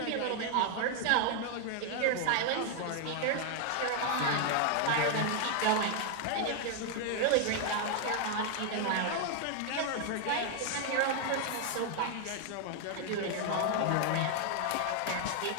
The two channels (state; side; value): different; both; correlation 0.00